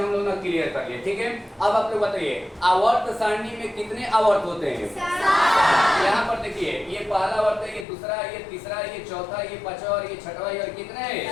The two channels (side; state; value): right; drops out; at 7.9 s